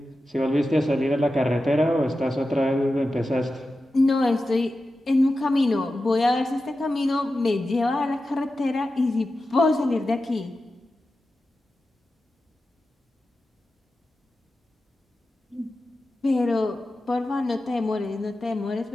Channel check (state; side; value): normal; both; correlation 0.92